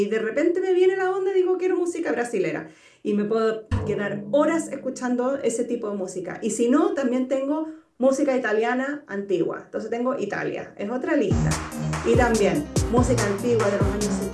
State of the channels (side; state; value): both; identical; correlation 1.00